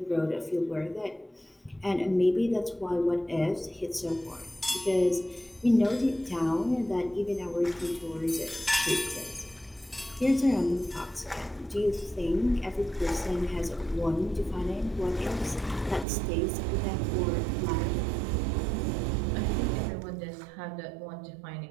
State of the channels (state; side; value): drops out; left; at 16.1 s